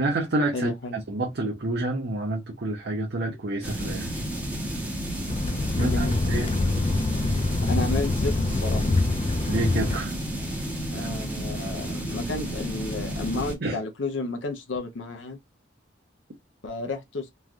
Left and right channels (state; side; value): normal; both; correlation 0.68